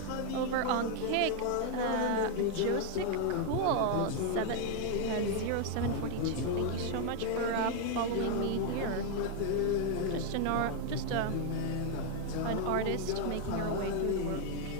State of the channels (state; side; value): different; both; correlation 0.00